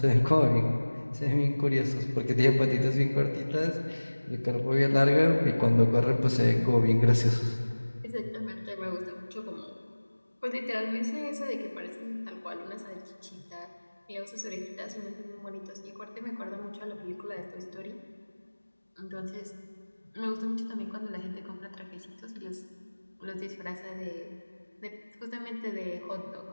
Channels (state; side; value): inverted; both; correlation -1.00